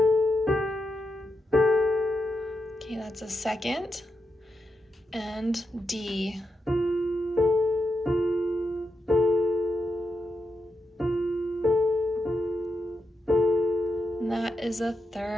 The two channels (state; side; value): normal; both; correlation 0.85